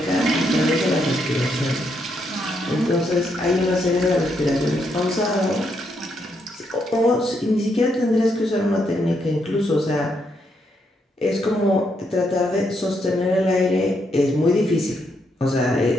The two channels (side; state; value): both; normal; correlation 0.77